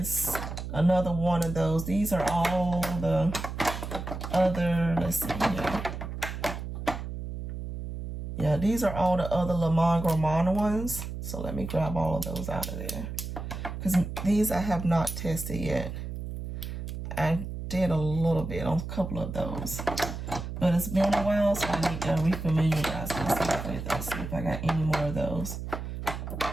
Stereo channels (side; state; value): right; noise; hum, 7 dB below the sound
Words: another one of those. These are all the other, let's see here. Yeah, these are all the other Le Monde Gourmand ones. So let me grab all of those out of there. Because these I have not tested yet. I did a little bit on a couple of those. But it's been a while, so I need to refamiliarize myself with those. See if I got any more of those.